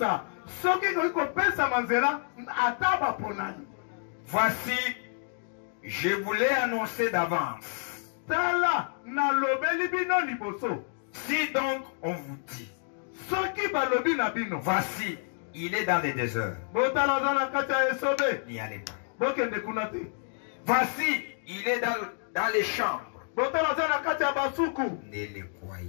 Voici, je voulais annoncer d'avance. Si donc on vous dit, voici, il est dans les déserts, n'y allez pas. Voici, il est dans les chambres, ne le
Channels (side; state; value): right; silent; 59 dB below the other